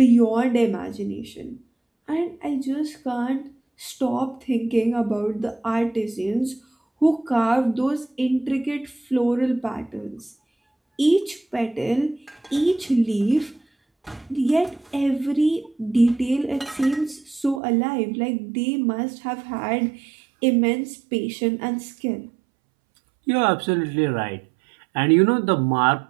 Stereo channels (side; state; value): left; drops out; at 17.6 s